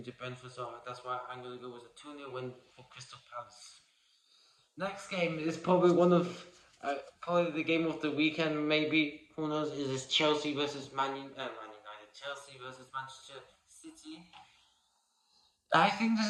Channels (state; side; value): identical; both; correlation 1.00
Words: to Brentford, so that's why I'm going to go with a 2-0 win for Crystal Palace. Next game is probably probably the game of the weekend, maybe. Who knows? Is this Chelsea versus Man United? Chelsea versus Manchester City. I think